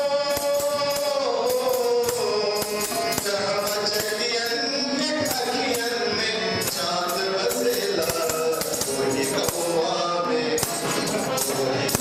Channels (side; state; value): both; identical; correlation 1.00